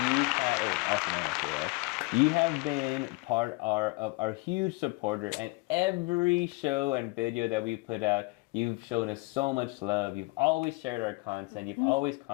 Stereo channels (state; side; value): quieter; right; 25.4 dB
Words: you have been part of our huge supporter, and every show and video that we put out, you've shown us so much love. You've always shared our content. You've always